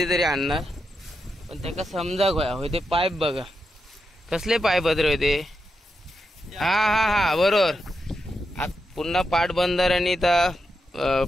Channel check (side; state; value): both; normal; correlation 0.86